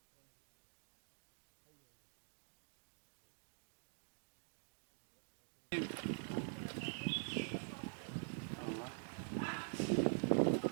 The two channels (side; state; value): left; silent; digital silence